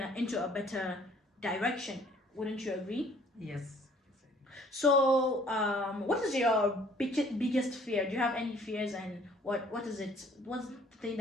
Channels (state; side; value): normal; both; correlation 0.58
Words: into a better direction. Wouldn't you agree? Yes. So, what is your biggest fear? Do you have any fears, and what is it? What's the thing